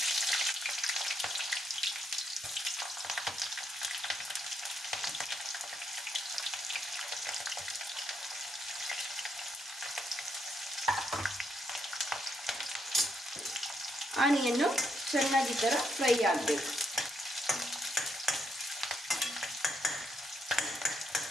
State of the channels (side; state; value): both; normal; correlation 0.77